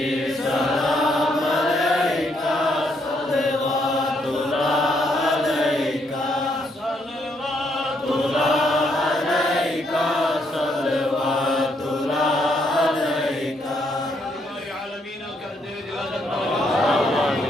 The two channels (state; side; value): normal; both; correlation 0.73